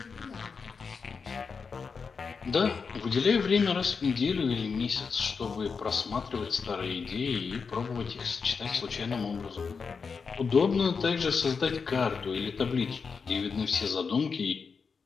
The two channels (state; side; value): quieter; right; 5.4 dB